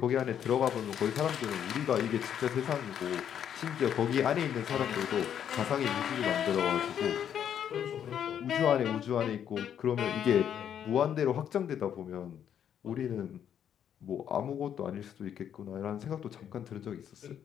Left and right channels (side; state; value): right; quieter; 9.2 dB